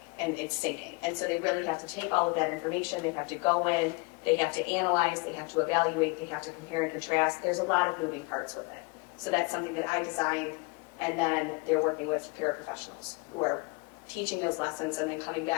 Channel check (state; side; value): quieter; right; 28.7 dB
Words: and it's sinking. And so they really have to take all of that information, they have to go in, they have to analyze, they have to evaluate, they have to compare and contrast. There's a lot of moving parts with it. So that's something that I designed, and then they're working with paraprofessionals who are teaching those lessons and then coming